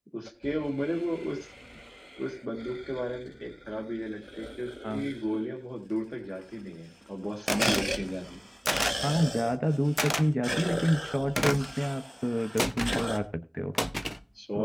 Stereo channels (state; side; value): identical; both; correlation 1.00